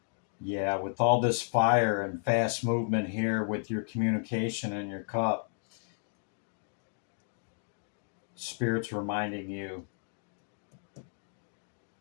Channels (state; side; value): silent; right; digital silence